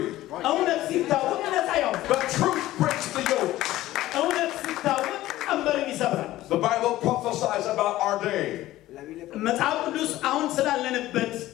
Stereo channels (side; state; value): right; quieter; 15.6 dB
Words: እውነት ሲታወቅ ነፃ ያወጣል። The truth breaks the yoke. እውነት ሲታወቅ ቀንበርን ይሰብራል። The Bible prophesies about our day. መጽሐፍ ቅዱስ አሁን ስላለንበት